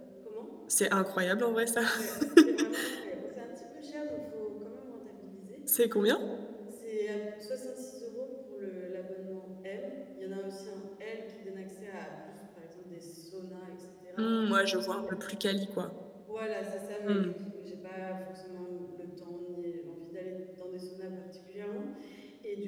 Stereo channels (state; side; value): identical; both; correlation 1.00